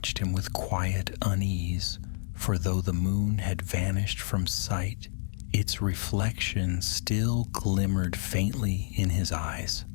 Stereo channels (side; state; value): right; silent; digital silence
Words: him with quiet unease, for though the moon had vanished from sight, its reflection still glimmered faintly in his eyes.